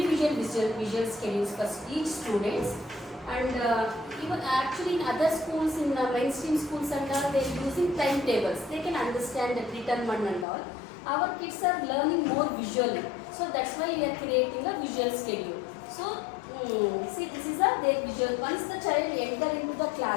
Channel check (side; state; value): right; drops out; at 10.5 s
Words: visual schedules for each student. And even actually in other schools, in mainstream schools and all, they're using timetables. They can understand the written one and all. Our kids are learning more visually. So that's why we are creating a visual schedule. So see, this is their visual. Once the child enter into the